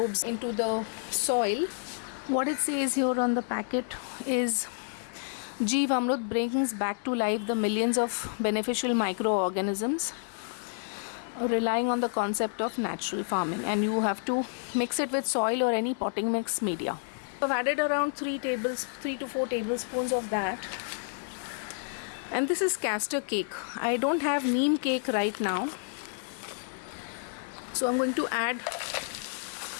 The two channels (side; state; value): right; silent; digital silence